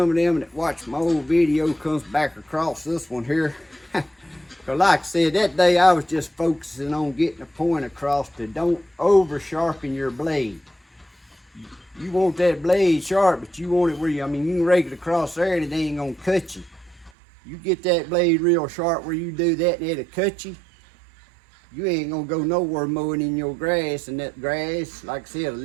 of them that watch my old video comes back across this one here. Because like I said, that day I was just focusing on getting a point across to don't over sharpen your blade. You want that blade sharp, but you want it where you, I mean, you can rake it across there and it ain't gonna cut you. You get that blade real sharp where you do that and it'll cut you. You ain't gonna go nowhere mowing in your grass, and that grass, like I said, a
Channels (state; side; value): drops out; left; at 17.1 s